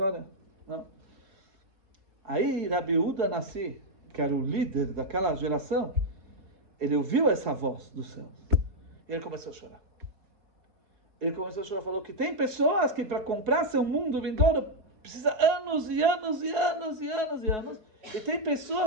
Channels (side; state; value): left; late; 4.7 ms